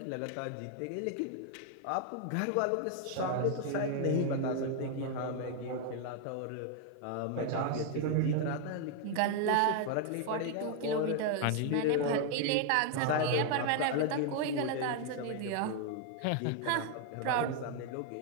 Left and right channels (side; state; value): both; different; correlation 0.00